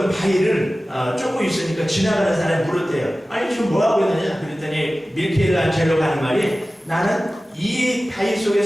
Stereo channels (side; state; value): both; normal; correlation 0.96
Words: 바위를 쫓고 있으니까 지나가는 사람이 물었대요. 아니 지금 뭐 하고 있느냐? 그랬더니 미켈란젤로가 하는 말이 나는 이 바위 속에